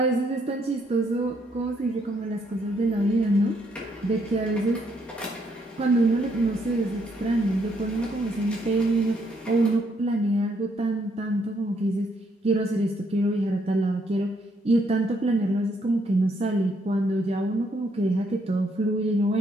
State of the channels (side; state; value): both; normal; correlation 0.72